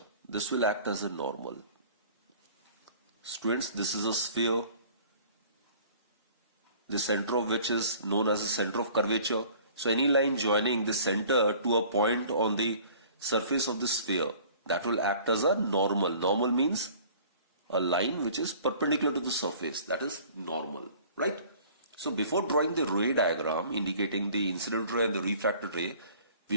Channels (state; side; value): inverted; both; correlation -0.50